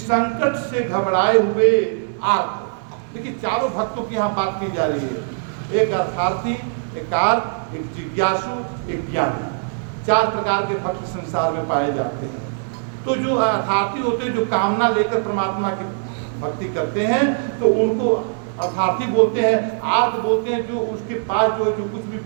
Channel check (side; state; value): left; silent; digital silence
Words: से घबराए हुए आर्त। देखिए, चारों भक्तों की यहाँ बात की जा रही है, एक अर्थार्थी, एक आर्त, एक जिज्ञासु, एक ज्ञानी। 4 प्रकार के भक्त संसार में पाए जाते हैं। तो जो अर्थार्थी होते हैं, जो कामना लेकर परमात्मा की भक्ति करते हैं, तो उनको अर्थार्थी बोलते हैं। आर्त बोलते हैं जो उसके पास जो है, जो कुछ भी